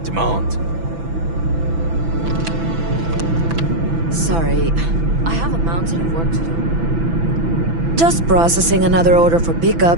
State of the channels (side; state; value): left; late; 6.0 ms